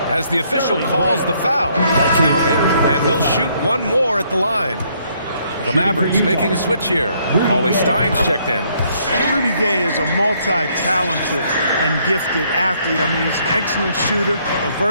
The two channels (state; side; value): inverted; both; correlation -0.68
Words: as the official calls the foul. Count it, and he'll shoot one more at the line. The Mavericks making a switch here. Cauley Stein's checked in. Well, Rudy Gay is a multi-talented and gifted athlete. I mean, he's an excellent shooter, a